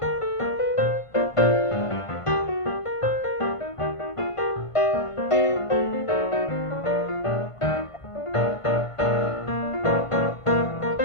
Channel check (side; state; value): right; late; 1.5 ms